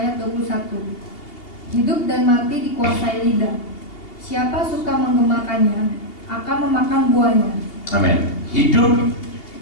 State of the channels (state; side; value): late; right; 2.8 ms